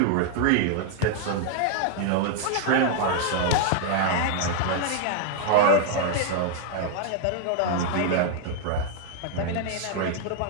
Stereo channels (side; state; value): both; different; correlation 0.00